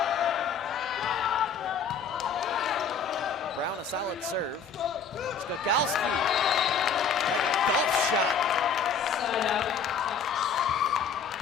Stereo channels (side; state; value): right; quieter; 5.9 dB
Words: Brown, a solid serve. Skakowski, like a golf shot.